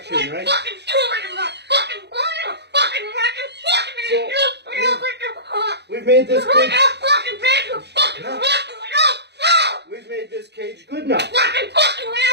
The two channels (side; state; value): left; late; 0.49 ms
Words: right? So, we've made this cage. We've made this cage good enough.